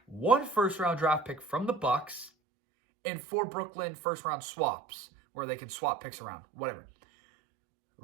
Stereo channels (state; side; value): drops out; left; at 2.3 s